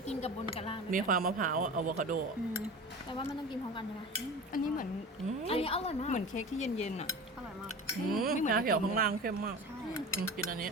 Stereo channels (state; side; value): normal; both; correlation 0.33